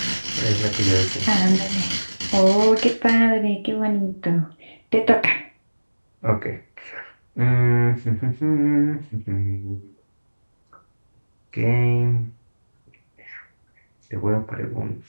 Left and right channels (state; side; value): inverted; both; correlation -1.00